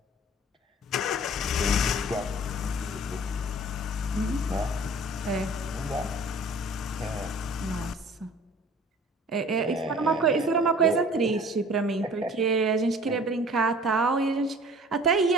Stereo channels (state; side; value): normal; both; correlation 0.47